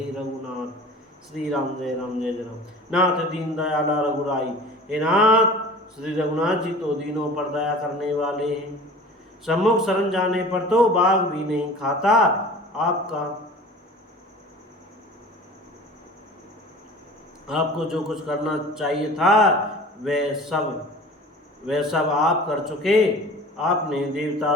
रघुनाथ। श्री राम जय राम। नाथ दीन दयाला रघुराई। हे नाथ, श्री रघुनाथ जी तो दीनों पर दया करने वाले हैं। सम्मुख शरण जाने पर तो बाघ भी नहीं खाता। आपको जो कुछ करना चाहिए था वह सब आप कर चुके। आपने देवता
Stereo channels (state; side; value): normal; both; correlation 0.41